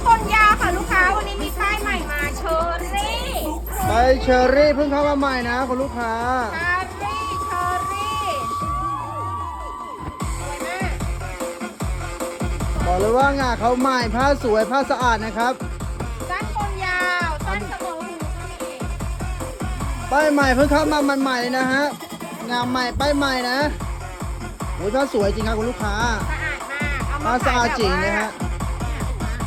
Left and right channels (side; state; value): both; identical; correlation 1.00